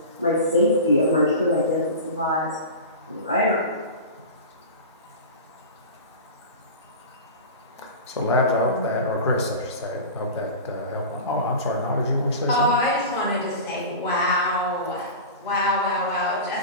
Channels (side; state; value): both; inverted; correlation -0.30